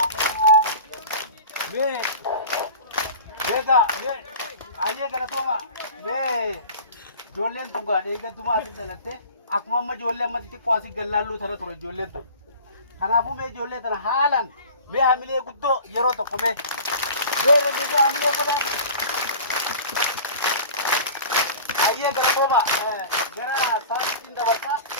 Ayyee galatooma ijoolleen tun gaadhee eeggattumaa asitti dhalatte akkuma amma ijoollee amma xixiqqoo asii gallaalluu tana ture ijoolleen tun. Kanaafuu mee ijoollee tana haalaan mee hamilee guddoo yeroo tokko mee regeessa hamilee godhan. Ayyee galatooma gara saasitiin dabarsaa.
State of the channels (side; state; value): both; inverted; correlation -0.40